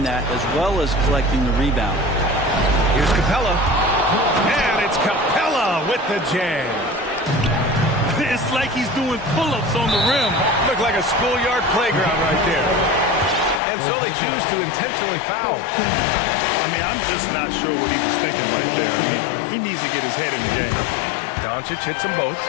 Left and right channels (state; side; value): drops out; right; at 13.6 s